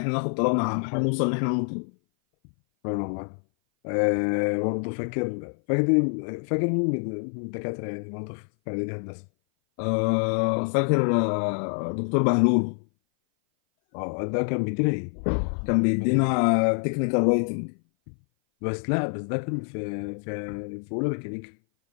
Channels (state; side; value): silent; right; 57 dB below the other